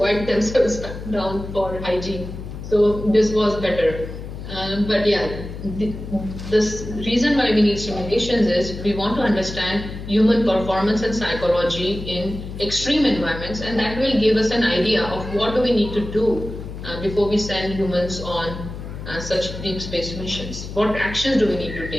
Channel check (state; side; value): noise; left; hum, 10 dB below the sound